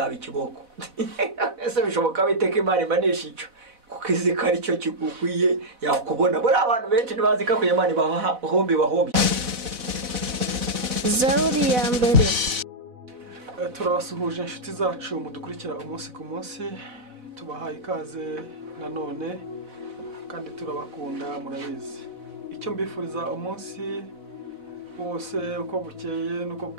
ikiboko. Ese bishoboka biteka Imana imanisha icyo kuko izi ko ari cyo kigukwiye yakubona. Buri abantu benshi ntibazi ko Imana ibahombi bahombi. Zaburi ya mbere. Turabasuhuje inshuti zacu mudukurikira umunsi ku munsi, tubahaye ikaze nanone kandi turabakunda murabizi. Icyo mbifuriza umunsi wose uko bukeye nuko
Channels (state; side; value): late; left; 4.0 ms